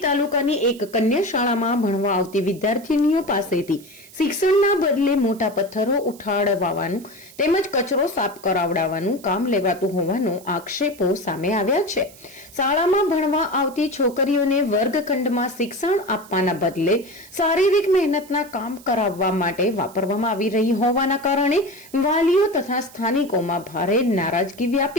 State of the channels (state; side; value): noise; right; hiss, 22 dB below the sound